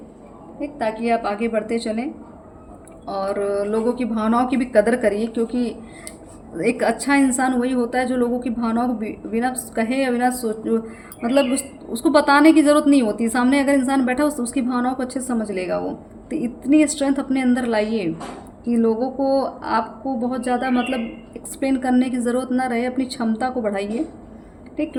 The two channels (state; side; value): identical; both; correlation 1.00